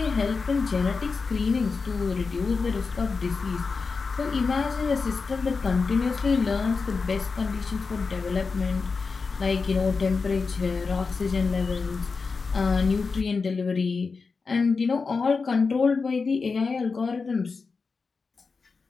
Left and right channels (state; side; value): quieter; right; 4.6 dB